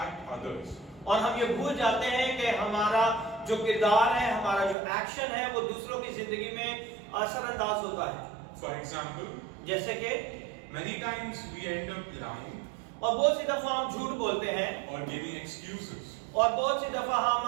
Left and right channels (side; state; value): left; drops out; at 4.8 s